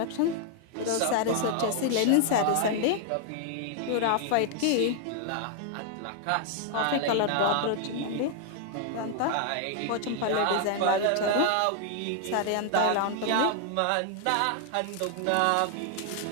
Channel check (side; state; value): both; different; correlation 0.00